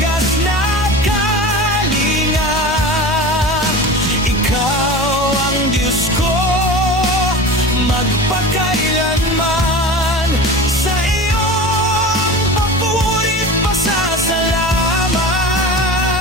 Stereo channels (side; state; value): both; normal; correlation 0.32